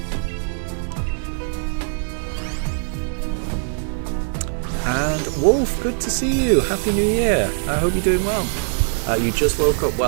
And Wolf, good to see you. Happy New Year. I hope you're doing well. You just woke up.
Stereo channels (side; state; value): left; silent; 65 dB below the other